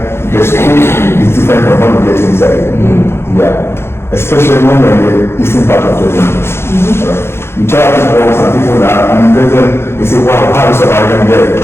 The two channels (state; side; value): late; right; 0.12 ms